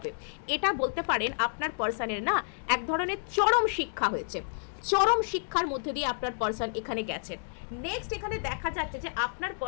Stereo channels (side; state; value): right; silent; digital silence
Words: এটা বলতে পারেন আপনার পার্সনের না এক ধরনের চরম শিক্ষা হয়েছে, চরম শিক্ষার মধ্যে দিয়ে আপনার পার্সন এখানে গেছেন। নেক্সট এখানে দেখা যাচ্ছে যে আপনার